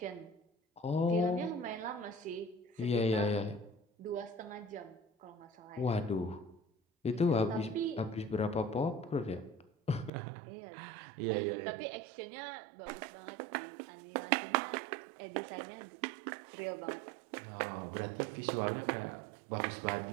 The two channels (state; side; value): drops out; left; at 10.1 s